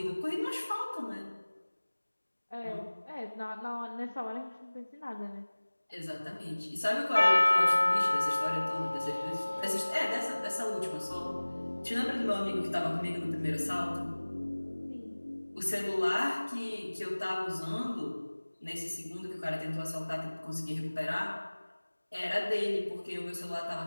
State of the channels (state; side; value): inverted; both; correlation -1.00